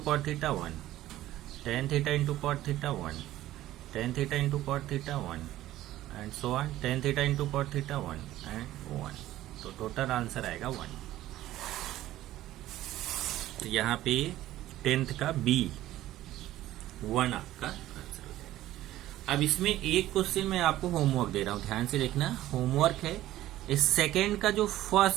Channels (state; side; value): quieter; left; 14.7 dB